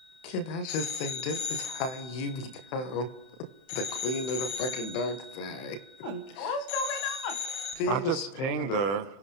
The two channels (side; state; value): right; late; 31 ms